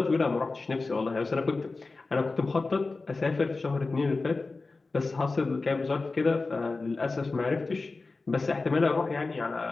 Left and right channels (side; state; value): right; quieter; 3.7 dB